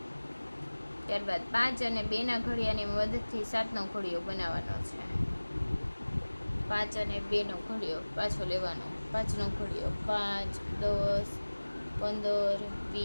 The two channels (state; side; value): inverted; both; correlation -1.00